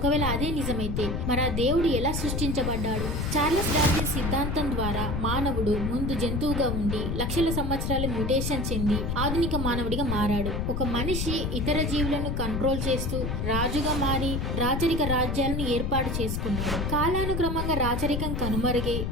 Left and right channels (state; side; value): noise; left; rumble, 1 dB below the sound